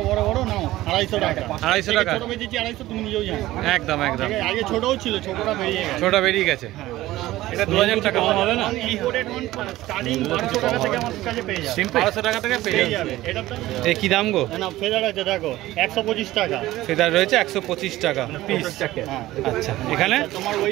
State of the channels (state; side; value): quieter; left; 16.4 dB